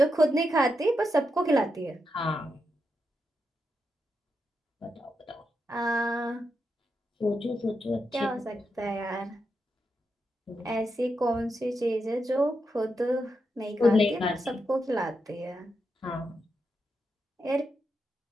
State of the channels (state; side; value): normal; both; correlation 0.85